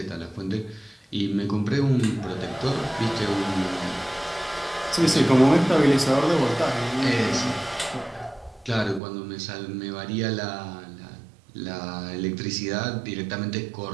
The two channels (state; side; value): drops out; left; at 9.0 s